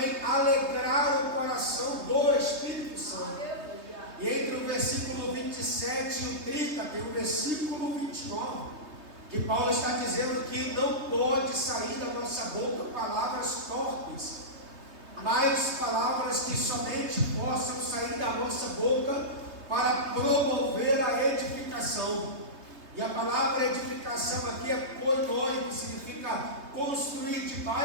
alegrar o coração do Espírito Santo. E entre o versículo 27 e o 30 tem o versículo 29, que Paulo está dizendo que não pode sair da nossa boca palavras torpes, mas palavras que somente possam sair da nossa boca para promover a edificação. E a palavra edificação aqui é koinoi, que significa construir de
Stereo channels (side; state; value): left; late; 3.2 ms